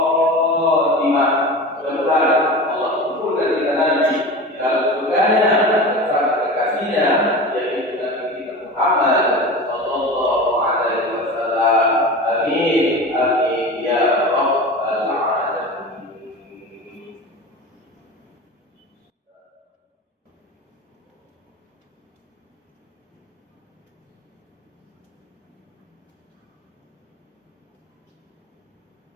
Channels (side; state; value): both; normal; correlation 0.31